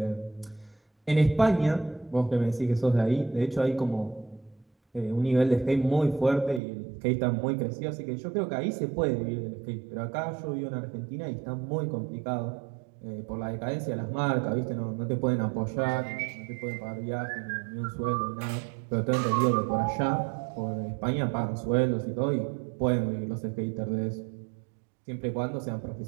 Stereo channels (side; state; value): left; drops out; at 6.6 s